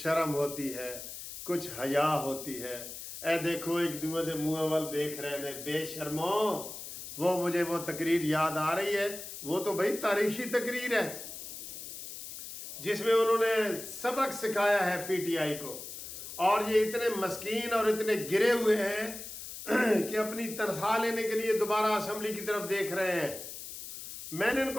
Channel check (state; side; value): noise; left; hiss, 10 dB below the sound